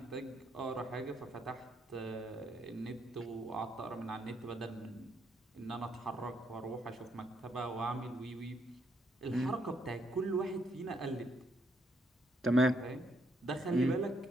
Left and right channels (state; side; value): normal; both; correlation 0.74